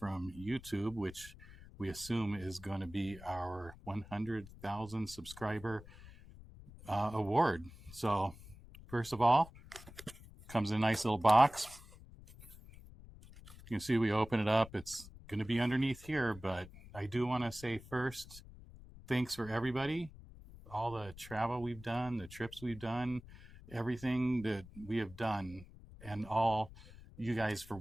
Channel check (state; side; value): noise; left; rumble, 18 dB below the sound